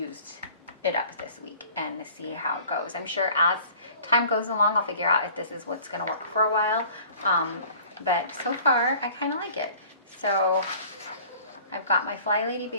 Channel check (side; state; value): both; inverted; correlation -0.48